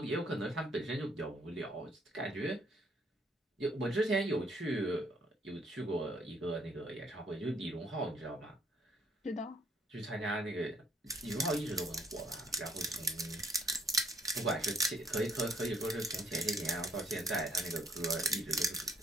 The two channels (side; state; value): both; normal; correlation 0.65